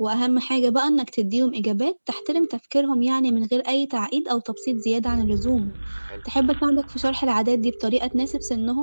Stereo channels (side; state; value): both; inverted; correlation -1.00